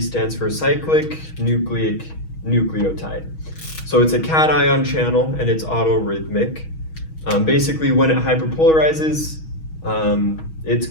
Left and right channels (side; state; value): right; late; 6.3 ms